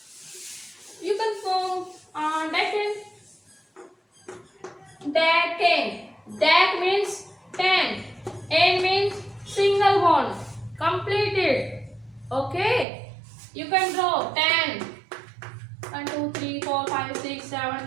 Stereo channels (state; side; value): drops out; left; at 12.9 s